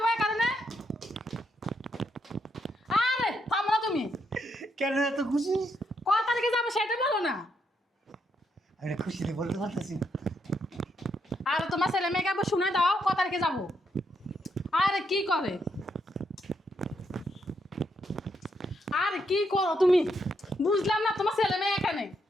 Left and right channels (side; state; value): both; normal; correlation 0.78